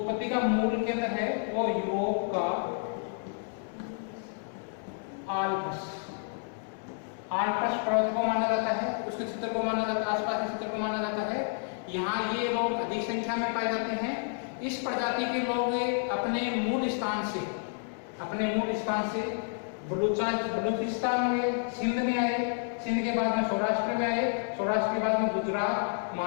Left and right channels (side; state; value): right; silent; 58 dB below the other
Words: का मूल केंद्र है वो यूरोप का आल्प्स पर्वत को माना जाता है, उसके क्षेत्र को माना जाता है, आसपास के क्षेत्र को माना जाता है। यहाँ ये लोग अधिक संख्या में पाए जाते हैं। इस प्रजाति के लोग अपने मूल स्थान से बलूचिस्तान में, सिंध में आए, सिंध के बाद में सौराष्ट्र में आए, सौराष्ट्र के बाद में गुजरात,